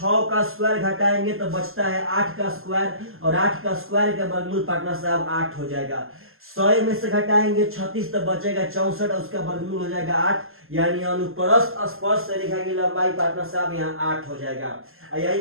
का स्क्वायर घटाएंगे तो बचता है 8 का स्क्वायर, और 8 का स्क्वायर का वर्गमूल पार्टनर साहब 8 हो जाएगा। 100 में से घटाएंगे 36 तो बचेगा 64, उसका वर्गमूल हो जाएगा 8, यानी अनुप्रस्थ स्पर्श रेखा की लंबाई पार्टनर साहब यहाँ 8 हो जाएगा।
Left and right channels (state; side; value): late; left; 0.61 ms